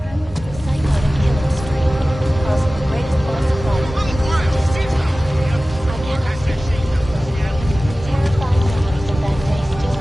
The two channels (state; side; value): normal; both; correlation 0.97